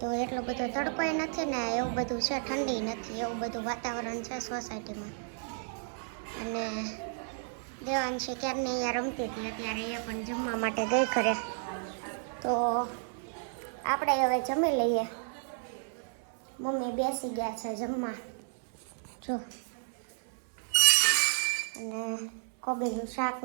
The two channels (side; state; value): left; silent; 56 dB below the other